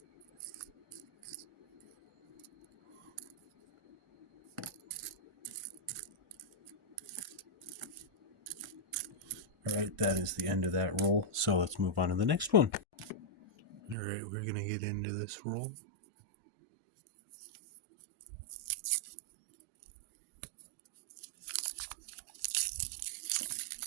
Alright, that is the end of that roll. So let's move on to the next one. Alright, we're going to get into this roll.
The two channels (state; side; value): drops out; left; at 14.0 s